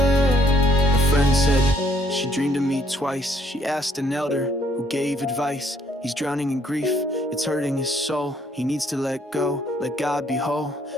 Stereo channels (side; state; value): both; normal; correlation 0.67